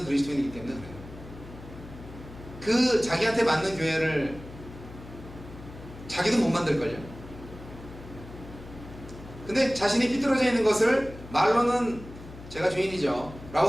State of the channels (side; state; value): left; noise; hum, 15 dB below the sound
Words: 그리스도인이기 때문에 그래요. 그 자기한테 맞는 교회를 자기도 못 만들걸요. 근데 자신이 삐뚤어져 있는 것을 말로는 제가 주인이죠 라고